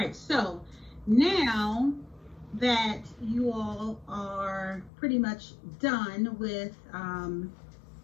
so now that you all are pretty much done with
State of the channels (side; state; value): right; drops out; at 4.9 s